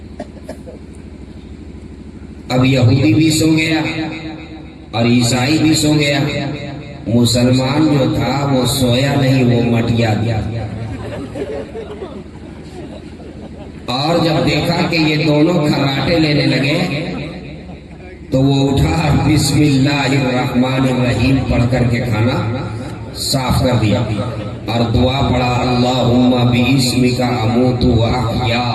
اب یہودی بھی سو گیا اور عیسائی بھی سو گیا، مسلمان جو تھا وہ سویا نہیں، وہ مٹیا گیا. اور جب دیکھا کہ یہ دونوں کھراٹے لینے لگے تو وہ اٹھا، بسم اللہ الرحمن الرحیم پڑھ کر کے کھانا صاف کر دیا اور دعا پڑھا، اللہم باسمک اموت و احیا،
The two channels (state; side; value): identical; both; correlation 1.00